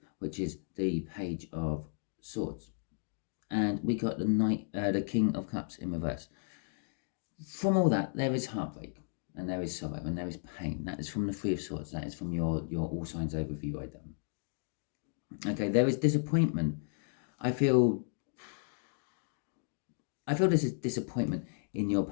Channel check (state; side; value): silent; right; digital silence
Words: which is the Page of Swords, and we got the King of Cups in reverse. From all that, there is heartbreak and there is sorrow and there is pain. That is from the Three of Swords. That is from your All Signs overview I done. Okay, there is disappointment. I feel this is disappointment in your